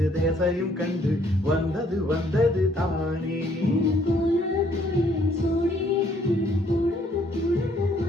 தேசையும் கண்டு வந்தது வந்தது தானே.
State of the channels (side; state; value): both; normal; correlation 0.65